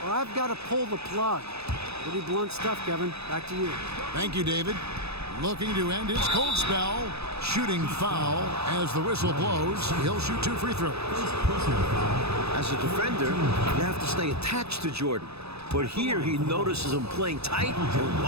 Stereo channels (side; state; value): left; late; 0.79 ms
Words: or I've got to pull the plug. Pretty blunt stuff, Kevin. Back to you. Thank you, David. Looking to end his cold spell. Shooting foul as the whistle blows. He'll shoot 2 free throws. As a defender, you have to stay attached to Jordan. But here he notices him playing tight and